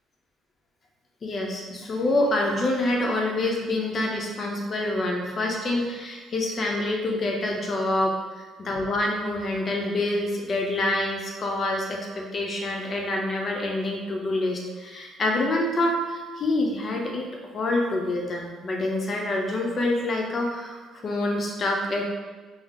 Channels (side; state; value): both; normal; correlation 0.74